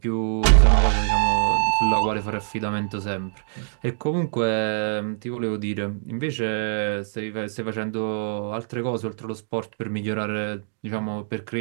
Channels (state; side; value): silent; left; digital silence